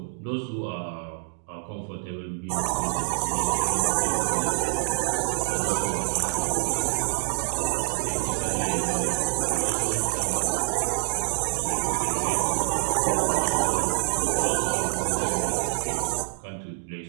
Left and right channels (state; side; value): silent; left; digital silence